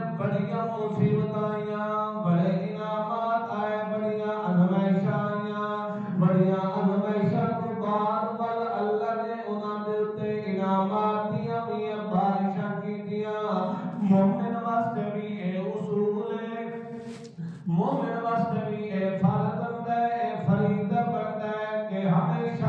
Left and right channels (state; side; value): identical; both; correlation 1.00